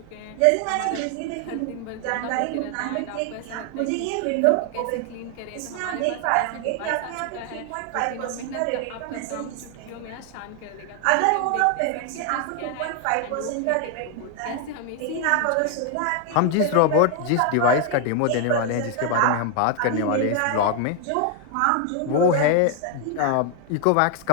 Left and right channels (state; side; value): different; both; correlation 0.00